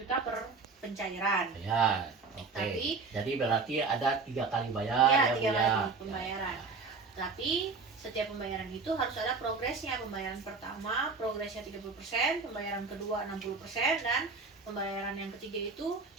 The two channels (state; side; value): quieter; left; 4.4 dB